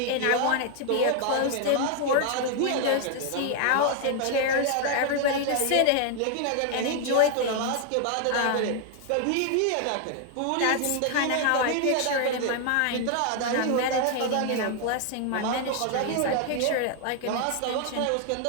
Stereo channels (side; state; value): both; different; correlation 0.00